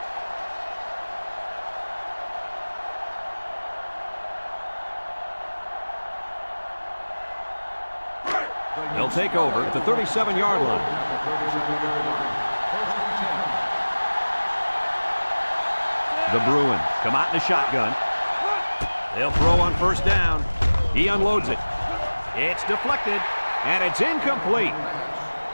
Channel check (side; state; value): both; inverted; correlation -1.00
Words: They'll take over at the 37-yard line. The Bruins come out in a shotgun. They'll throw on first down. He unloads it. It's deflected, and it's incomplete.